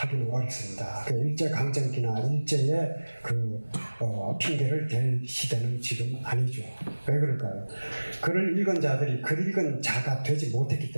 어렵습니다. 일제강점기나 일제의 핑계를 댈 시대는 지금 아니죠. 왜 그럴까요? 글을 읽은 자들이 글 읽은 자가 되지 못했기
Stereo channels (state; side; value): inverted; both; correlation -1.00